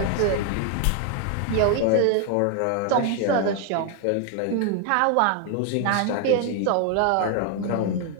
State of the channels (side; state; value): both; different; correlation 0.01